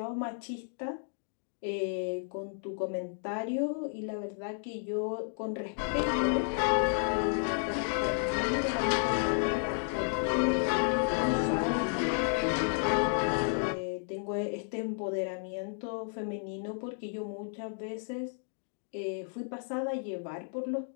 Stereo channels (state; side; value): silent; right; digital silence